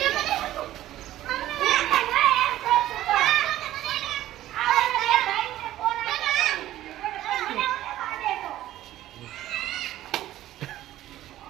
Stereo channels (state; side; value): quieter; left; 14.0 dB